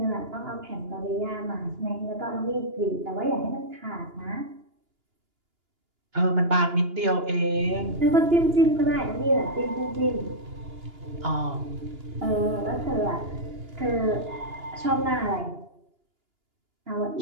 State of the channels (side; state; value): left; late; 2.9 ms